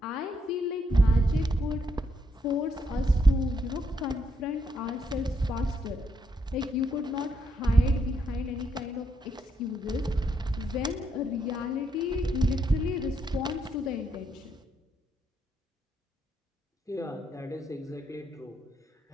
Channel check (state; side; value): normal; both; correlation 0.77